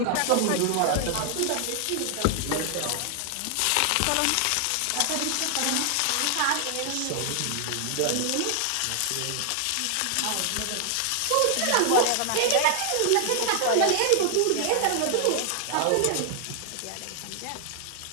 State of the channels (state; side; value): different; both; correlation 0.00